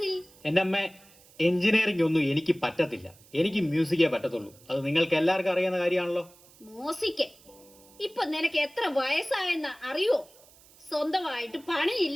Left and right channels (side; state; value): right; noise; hiss, 26 dB below the sound